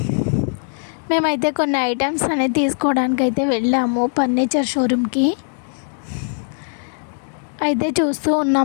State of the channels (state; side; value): silent; right; 60 dB below the other